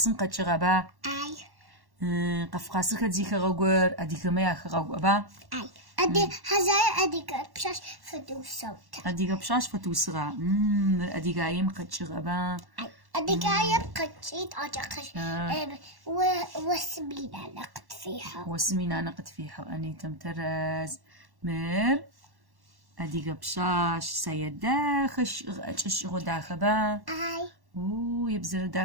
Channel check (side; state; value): left; late; 1.1 ms